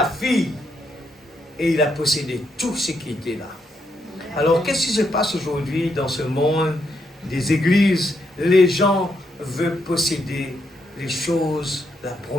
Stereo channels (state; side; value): normal; both; correlation 0.78